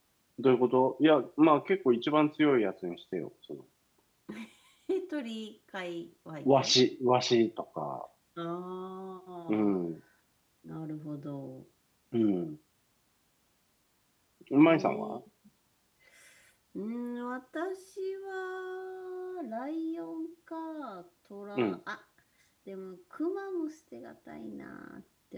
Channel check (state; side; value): identical; both; correlation 1.00